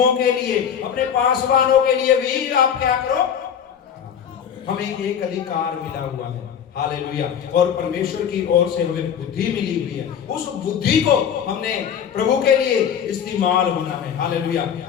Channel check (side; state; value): right; quieter; 8.3 dB